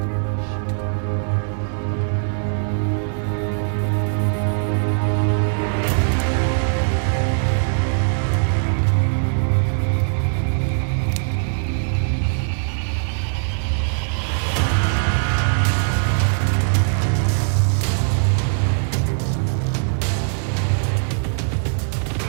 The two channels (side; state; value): left; silent; digital silence